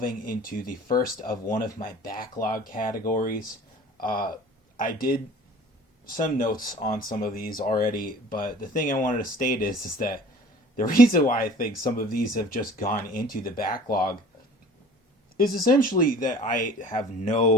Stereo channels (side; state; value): both; normal; correlation 0.46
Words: into the first of one of my backlog categories. I did some notes on some of these already, but the thing I wanted to state is that the reason why I think some of these have just gone into the backlog is essentially that I have